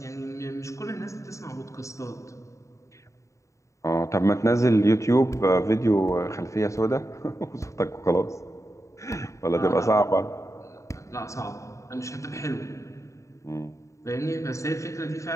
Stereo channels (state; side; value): late; right; 0.15 ms